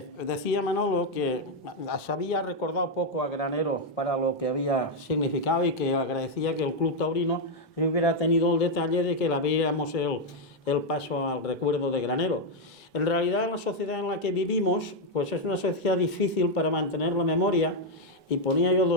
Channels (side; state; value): both; normal; correlation 0.01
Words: Manolo que se había recordado poco a Granero para lo que había significado y que agradecía que el Club Taurino hubiera tenido el detalle de que le abriéramos el paso al recuerdo de Granero. En realidad, la sociedad en la que vivimos pues es una sociedad difícil para mantener la memoria, y ponía yo